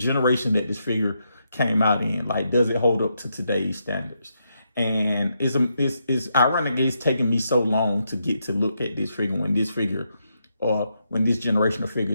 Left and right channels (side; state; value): both; inverted; correlation -0.81